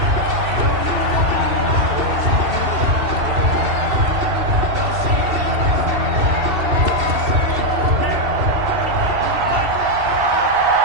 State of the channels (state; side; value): late; left; 2.7 ms